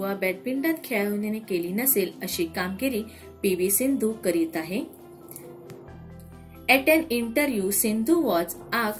बॅडमिंटन खेळाडूने केली नसेल अशी कामगिरी पी.व्ही. सिंधू करीत आहे. At an interview, Sindhu was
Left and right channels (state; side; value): identical; both; correlation 1.00